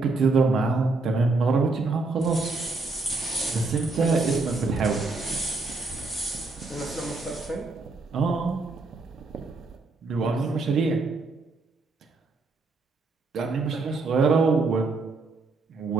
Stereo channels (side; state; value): left; quieter; 3.6 dB